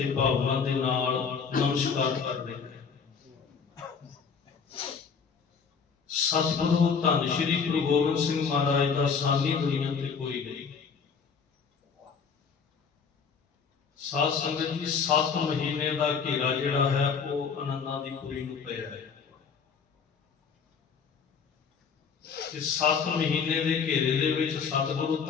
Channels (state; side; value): quieter; right; 6.0 dB